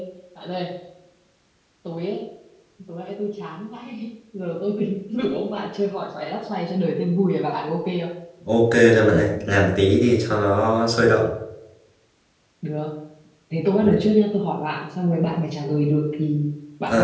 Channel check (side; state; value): both; identical; correlation 1.00